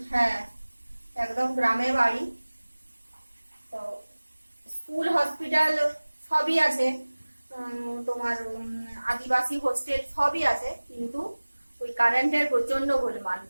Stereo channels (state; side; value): inverted; both; correlation -1.00